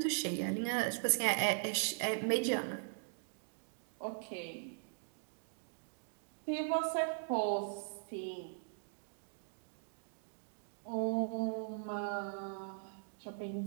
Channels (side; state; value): left; silent; digital silence